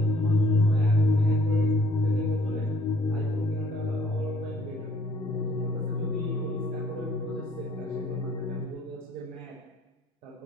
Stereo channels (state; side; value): normal; both; correlation 0.60